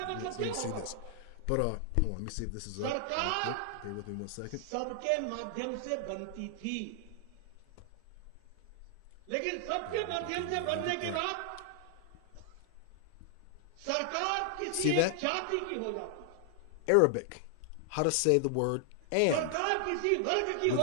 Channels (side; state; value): both; different; correlation 0.00